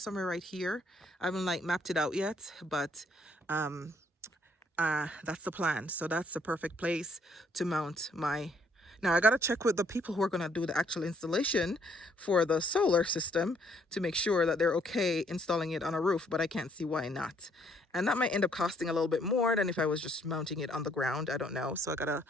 right here. I haven't like mapped it out yet, but that's the plan. So that's the perfect place to mount my. Now I got to check with the people who are going to do the actual installation for the solar system to make sure that they're okay installing it on a roof, but I can't see why not. And that might end up costing a little bit more than if I was just mounting it on the ground. I don't know. So I got to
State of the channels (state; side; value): normal; both; correlation 0.67